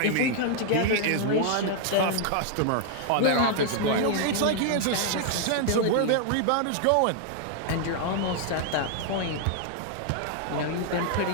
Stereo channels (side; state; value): both; different; correlation 0.00